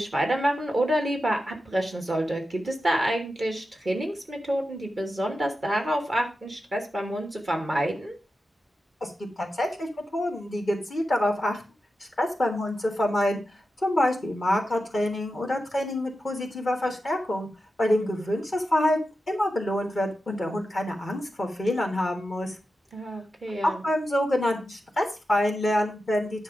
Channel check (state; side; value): normal; both; correlation 0.91